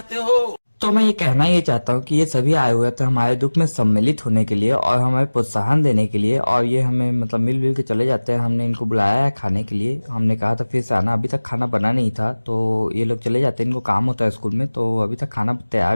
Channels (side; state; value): both; inverted; correlation -1.00